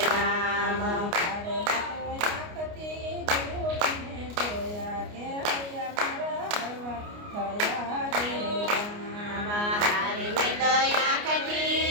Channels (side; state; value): left; late; 29 ms